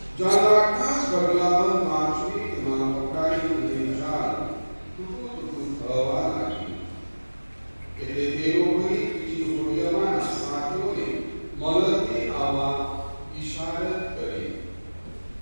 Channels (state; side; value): inverted; both; correlation -1.00